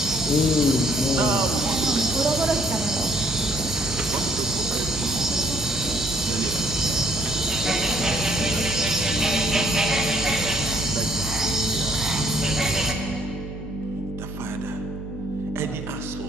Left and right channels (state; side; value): noise; right; hum, 13 dB below the sound